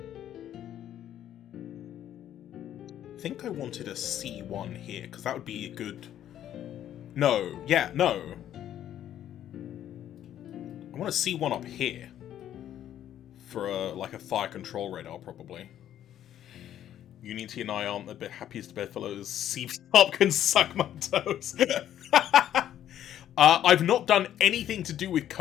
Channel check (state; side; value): quieter; right; 11.2 dB